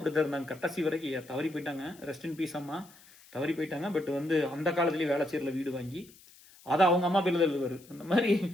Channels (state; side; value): noise; left; hiss, 24 dB below the sound